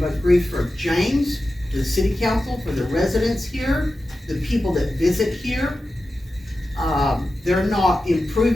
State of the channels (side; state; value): both; normal; correlation 0.93